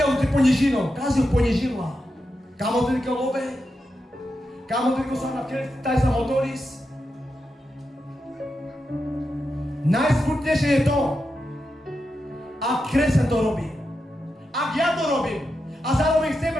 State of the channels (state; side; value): normal; both; correlation 0.88